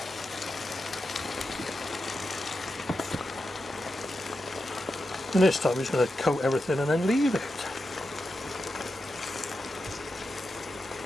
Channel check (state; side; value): normal; both; correlation 0.89